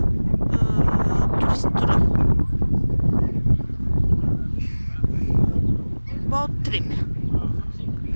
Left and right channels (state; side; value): inverted; both; correlation -1.00